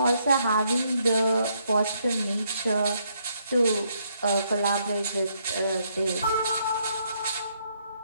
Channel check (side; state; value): both; inverted; correlation -0.73